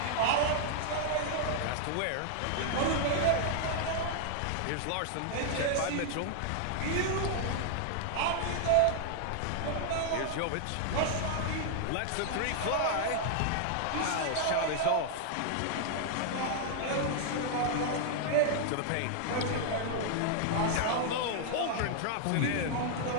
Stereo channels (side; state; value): both; different; correlation 0.00